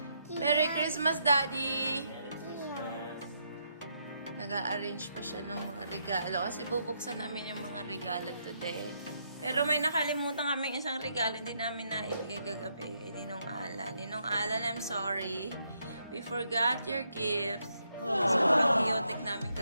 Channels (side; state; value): both; inverted; correlation -0.78